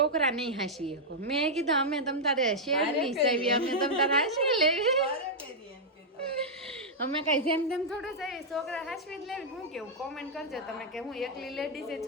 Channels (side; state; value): both; normal; correlation -0.06